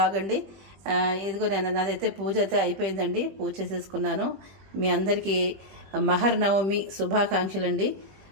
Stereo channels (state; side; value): late; left; 20 ms